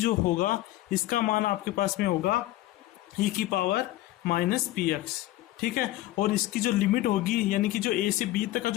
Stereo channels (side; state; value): right; quieter; 16.0 dB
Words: होगा इसका मान आपके पास में होगा ई की पावर माइनस पी एक्स, ठीक है। और इसकी जो लिमिट होगी यानी कि जो ए से बी तक का